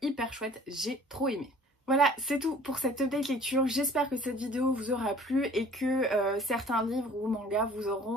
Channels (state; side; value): normal; both; correlation 0.50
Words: hyper chouette, j'ai trop aimé. Voilà, c'est tout pour cette update lecture. J'espère que cette vidéo vous aura plu et que certains livres ou mangas vous